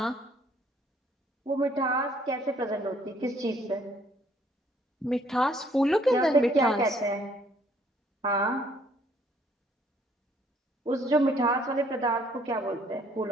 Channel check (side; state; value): both; normal; correlation 0.64